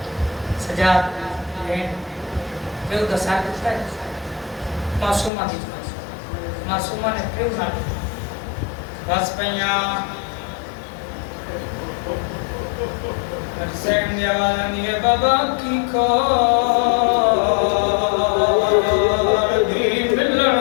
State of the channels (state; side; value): drops out; right; at 5.3 s